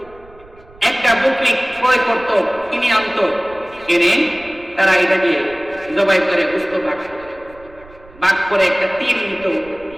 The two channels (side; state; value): right; noise; rumble, 23 dB below the sound